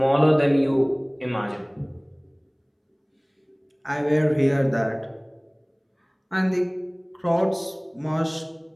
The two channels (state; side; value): identical; both; correlation 1.00